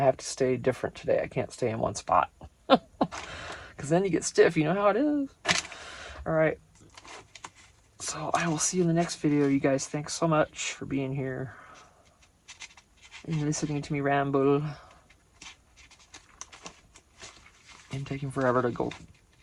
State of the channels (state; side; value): identical; both; correlation 1.00